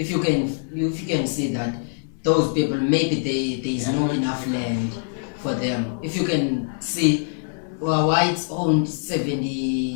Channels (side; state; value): right; silent; digital silence